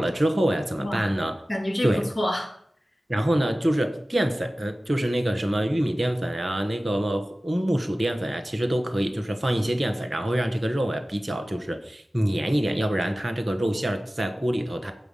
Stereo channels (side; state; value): both; normal; correlation 0.96